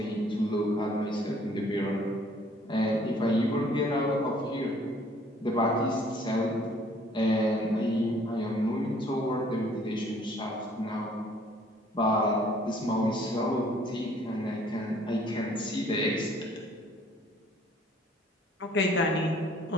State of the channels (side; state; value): both; normal; correlation 0.59